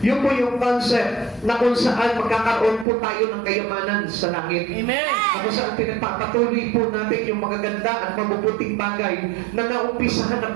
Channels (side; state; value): left; drops out; at 2.9 s